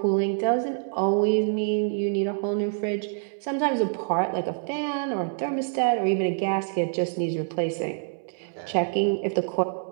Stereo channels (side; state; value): left; silent; 61 dB below the other